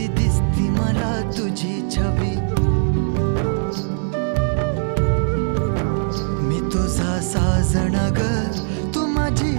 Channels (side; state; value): left; silent; digital silence